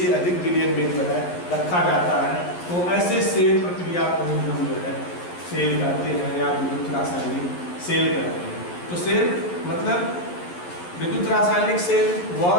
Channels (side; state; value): right; late; 11 ms